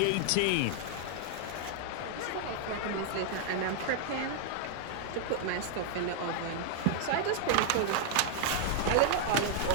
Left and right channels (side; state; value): both; different; correlation -0.01